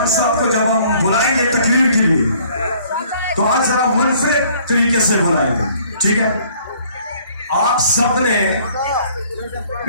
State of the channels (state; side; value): inverted; both; correlation -0.58